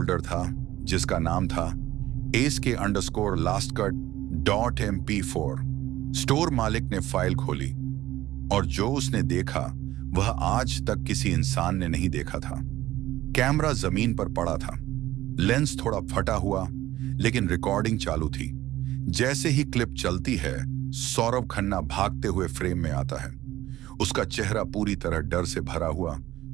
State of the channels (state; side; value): quieter; left; 15.3 dB